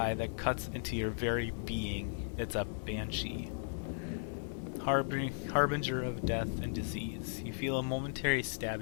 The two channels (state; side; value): silent; right; digital silence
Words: that cuts into your very being. It's a banshee. Harbinger of death and disease. You feel a momentary